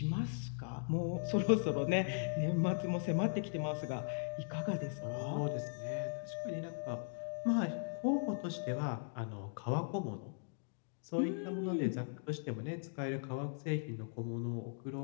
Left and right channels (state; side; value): silent; right; digital silence